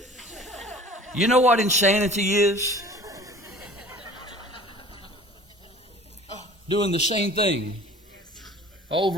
You know what insanity is? Doing the same thing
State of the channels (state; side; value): normal; both; correlation 0.46